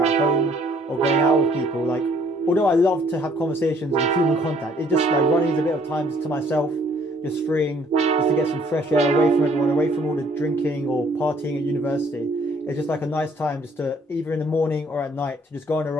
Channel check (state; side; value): normal; both; correlation 0.61